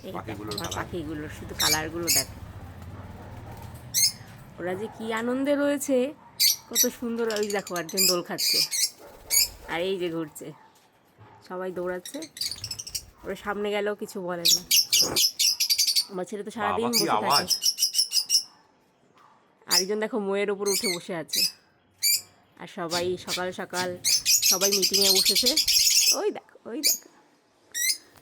এই আমার পাখিগুলোর শুধু কালারগুলো দেখো, ওরা যে কি আনন্দে রয়েছে, কত সুন্দর। ওই দেখো একজন দোল খাচ্ছে, আর এই যে ঘুরছে, সবাই দৌড়াচ্ছে। ওরা সামনে গেলেও কিছু বলে না। আমার ছেলে তো সারাদিন বসে থাকে। আরেকজন দেখো ময়ের ওপর উঠে বসে আছে। আর সবাই সকাল সকাল সবাই মিটিংয়ে বসেছে। ওই দেখো, ওই দেখো।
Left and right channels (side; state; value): both; identical; correlation 1.00